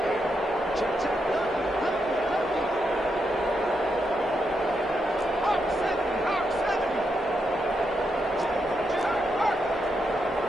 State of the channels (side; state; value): both; normal; correlation 0.82